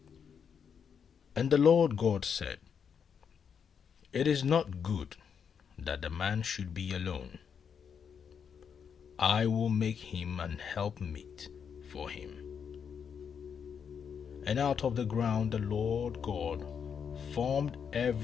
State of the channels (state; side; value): quieter; right; 7.1 dB